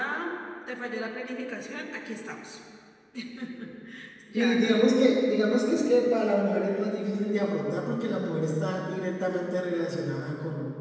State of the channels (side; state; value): both; identical; correlation 1.00